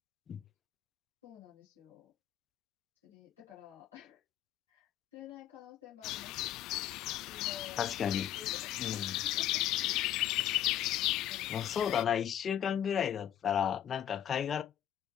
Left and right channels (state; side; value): quieter; right; 10.9 dB